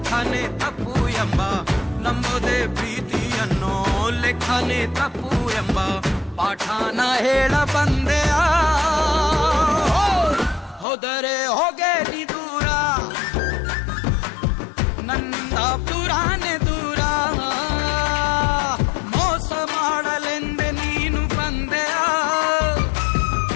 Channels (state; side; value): drops out; right; at 10.9 s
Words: ತಪ್ಪು ಎಂಬ ನಂಬೋದೇ ಪ್ರೀತಿಯನ್ನು ಲೆಕ್ಕನೆ ತಪ್ಪು ಎಂಬ ಪಾಠನ ಹೇಳ ಬಂದೆಯ ಹೋದರೆ ಹೋಗೆ ನೀ ದೂರ ನನ್ನಿಂದ ದೂರಾನೆ ದೂರ ಮೋಸ ಮಾಡಲೆಂದೆ ನೀನು ಬಂದೆಯ